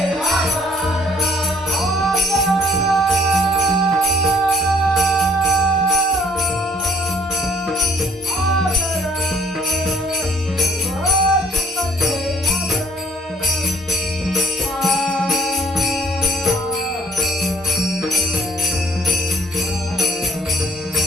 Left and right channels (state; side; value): normal; both; correlation 0.58